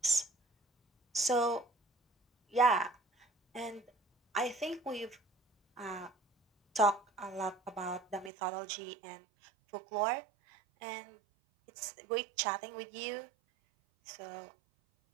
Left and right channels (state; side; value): drops out; left; at 8.3 s